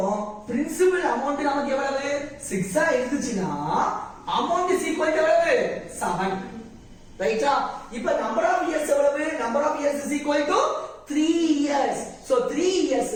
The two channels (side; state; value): both; identical; correlation 1.00